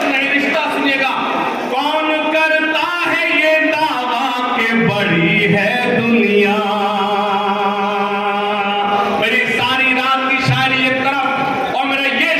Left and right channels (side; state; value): both; identical; correlation 1.00